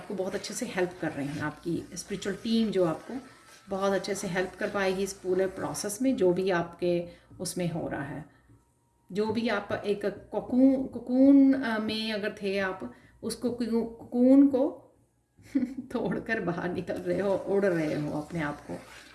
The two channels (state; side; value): identical; both; correlation 1.00